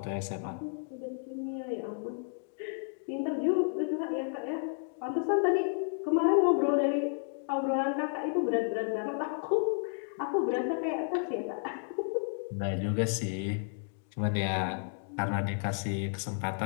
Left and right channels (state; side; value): silent; right; digital silence